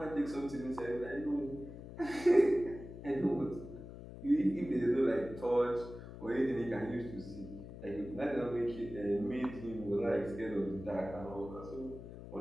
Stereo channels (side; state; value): left; noise; hum, 13 dB below the sound